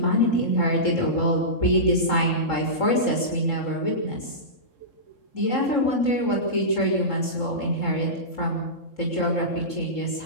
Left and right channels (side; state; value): right; late; 3.7 ms